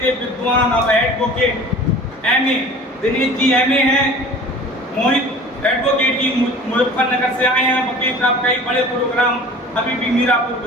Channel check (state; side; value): normal; both; correlation 0.43